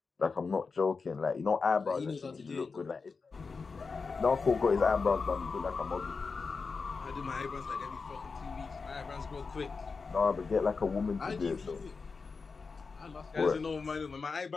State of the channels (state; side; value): quieter; right; 4.7 dB